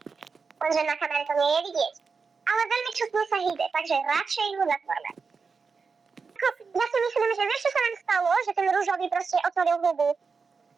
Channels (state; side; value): quieter; left; 5.1 dB